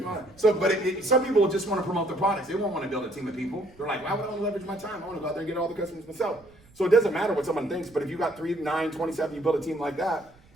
on? So, but some people just want to promote the products. They won't want to build a team of people. They're like, why would I want to leverage my time? I want to go out there and get all the customers myself. So it doesn't matter what someone thinks, but if you got 3, 9, 27, you build a team like that,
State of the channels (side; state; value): right; noise; rumble, 28 dB below the sound